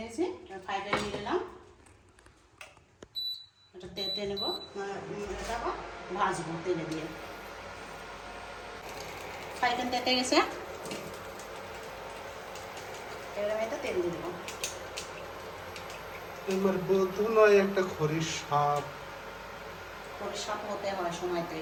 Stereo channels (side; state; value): both; identical; correlation 1.00